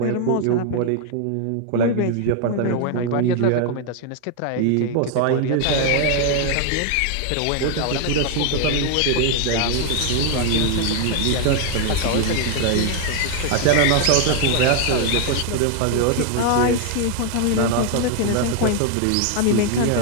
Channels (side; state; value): both; different; correlation 0.00